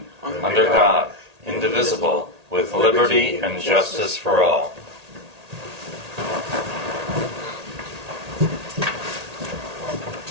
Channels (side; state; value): left; late; 1.8 ms